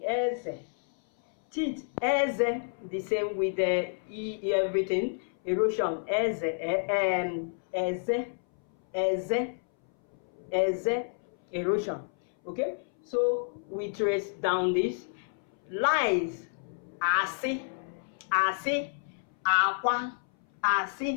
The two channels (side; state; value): right; silent; 58 dB below the other